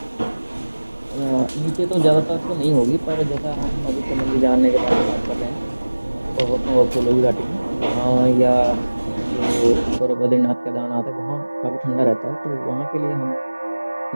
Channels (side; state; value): both; inverted; correlation -1.00